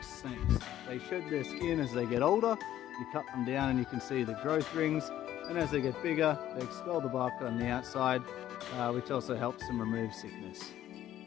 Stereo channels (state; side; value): quieter; right; 12.4 dB